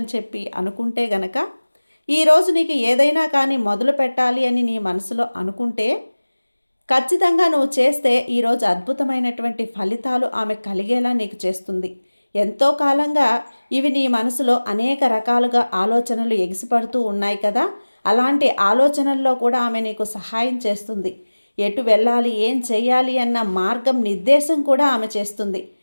చెప్పి అనుకుంటే గనక ఈరోజు నీకు ఏదైనా కానీ మొదలు పెట్టాలి అని నీ మనసులో అనుకుంటే ఖచ్చితంగా నువ్వు చేస్తే ఈరోజు అద్భుతమైనటువంటి ఫలితాలు ఆమె కలిగేలా నీకు చేస్తుంది. ఎంతో కాలంగా ఇవి నీ మనసులో అనేక రకాలుగా ఆలోచనలు ఎగిసిపడుతూ ఉన్నాయి కదా, అలాంటి ఆలోచనల్లో కూడా ఆమె నీకు సహాయం చేస్తుంది. ఎటు వెళ్ళాలి, ఏం చేయాలి అన్న మార్గం నిర్దేశం కూడా ఆమె చేస్తుంది.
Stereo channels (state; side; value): inverted; both; correlation -1.00